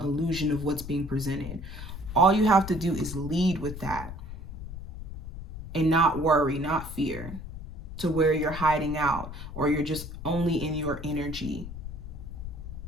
of what's being presented. All you have to do is lead with that and not worry, not fear, to where you're hiding out or you're just only in your energy.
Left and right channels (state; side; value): noise; left; rumble, 9 dB below the sound